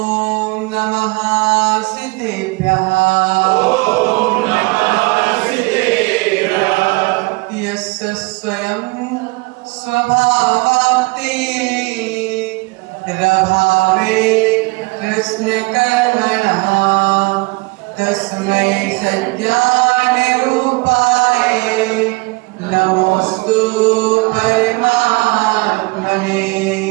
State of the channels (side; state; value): left; quieter; 26.1 dB